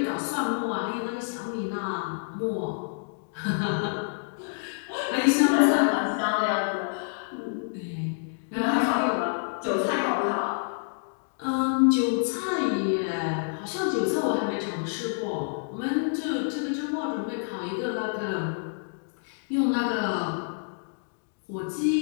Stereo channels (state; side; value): silent; right; digital silence